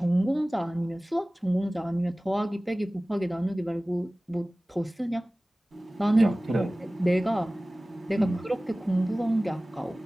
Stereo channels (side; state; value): both; normal; correlation 0.98